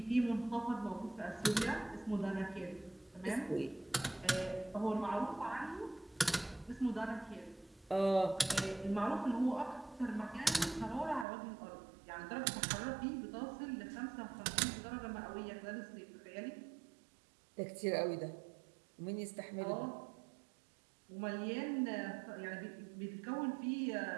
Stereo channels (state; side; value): drops out; left; at 11.2 s